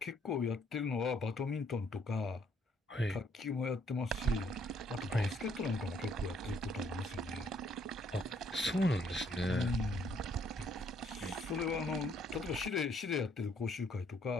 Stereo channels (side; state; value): both; normal; correlation 0.67